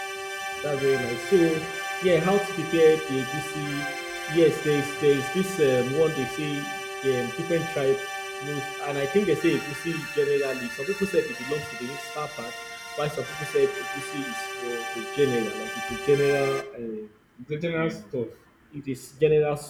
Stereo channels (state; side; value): identical; both; correlation 1.00